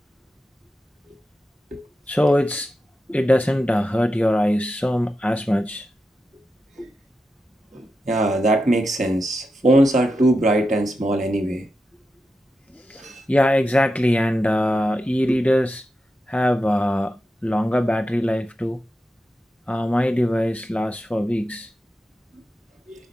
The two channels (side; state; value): both; normal; correlation 0.89